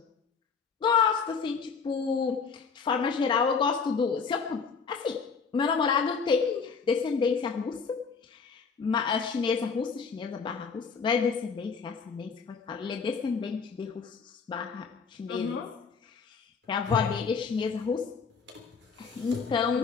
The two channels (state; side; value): quieter; right; 5.5 dB